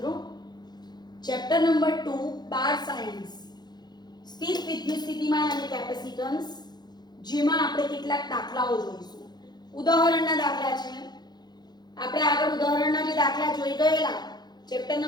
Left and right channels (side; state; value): right; late; 0.20 ms